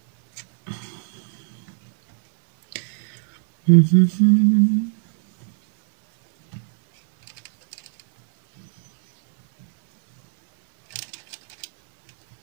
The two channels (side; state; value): left; silent; digital silence